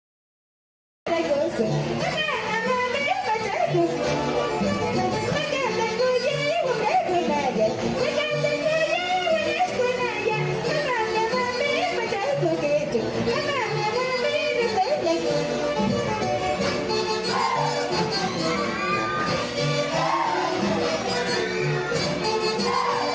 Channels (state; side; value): identical; both; correlation 1.00